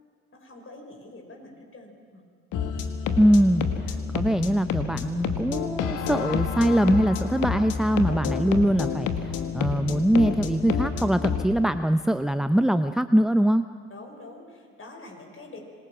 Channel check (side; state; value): both; normal; correlation 0.88